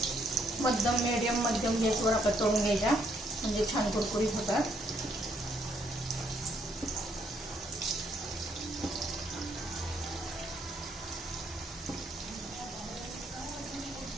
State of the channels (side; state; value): both; normal; correlation 0.71